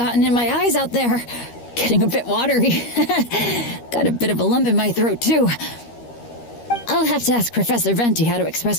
in my eyes out there. Getting a bit watery. Got a bit of a lump in my throat, too. I'll have to ask Professor Venti how to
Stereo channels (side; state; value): right; late; 13 ms